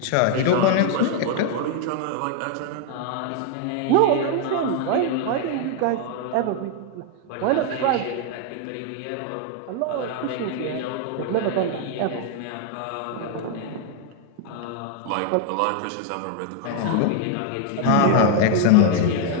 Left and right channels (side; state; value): both; different; correlation 0.00